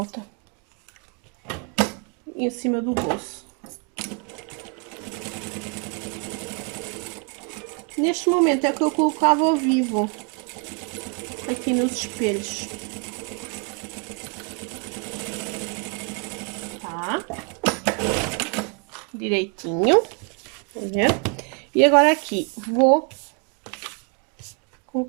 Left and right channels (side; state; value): left; quieter; 36.7 dB